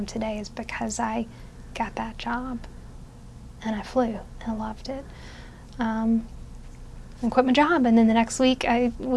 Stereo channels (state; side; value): identical; both; correlation 1.00